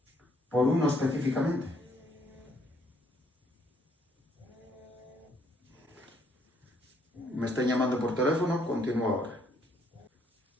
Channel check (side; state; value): both; normal; correlation 0.68